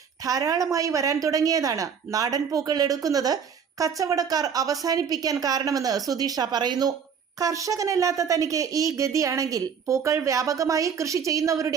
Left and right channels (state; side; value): quieter; left; 7.0 dB